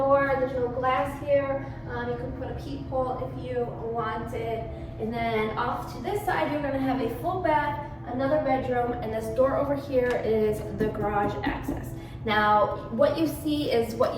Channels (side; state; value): both; identical; correlation 1.00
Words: There's no glass here. You can put a peephole if you wanted. And then off to this side, you're going to have a full bath, another bedroom, and this door over here is the garage access. Now, what you see is what